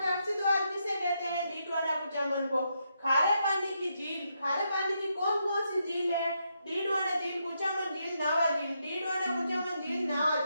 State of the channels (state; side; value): inverted; both; correlation -0.80